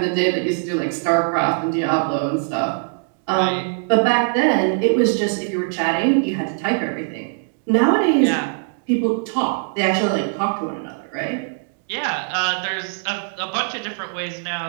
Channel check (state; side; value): silent; left; digital silence